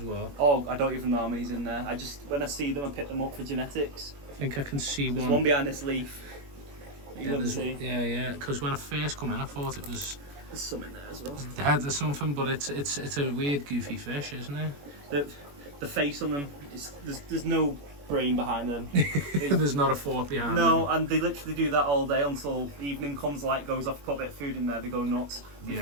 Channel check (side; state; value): left; late; 21 ms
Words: well. Oh, I don't even know how many's in there. When I see them, I pick them up for genetics. I think I can see There's one. one behind this leaf. Yeah. Because when I first come in, I thought it was. There's some in there as well. There's something, but it's a weird, goofy fish, isn't it? The face on them, there's no brain behind them. There's not a fork behind them. No, and they literally do that all day until evening comes, light goes off, put a bit of food in there, they go nuts. If